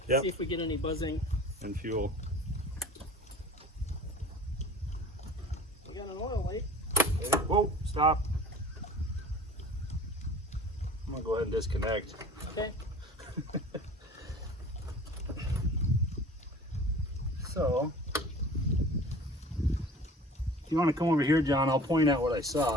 Yep. See if we get any buzzing. And fuel. We got an oil leak. Okay. Whoa, stop. I'm gonna go ahead and disconnect. Okay. So, if you want to come over here, John, I'll point out what I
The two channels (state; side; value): normal; both; correlation 0.43